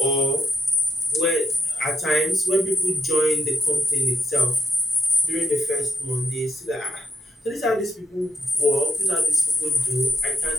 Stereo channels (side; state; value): both; normal; correlation 0.77